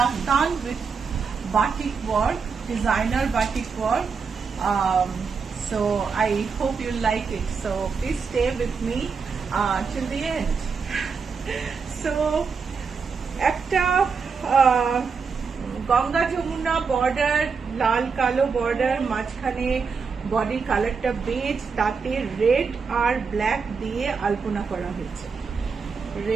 with batik work, designer batik work. So I hope you like it. So please stay with me till the end. So একটা Ganga Jamuna border, লাল কালো border, মাঝখানে বডির কালারটা base, তাতে red আর black দিয়ে আলপনা করা হয়েছে।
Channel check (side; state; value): left; quieter; 5.4 dB